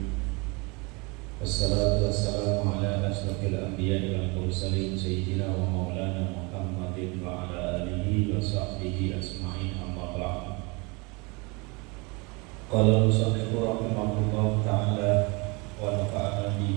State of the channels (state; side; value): quieter; left; 28.3 dB